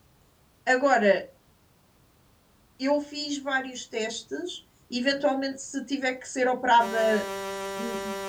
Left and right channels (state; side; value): identical; both; correlation 1.00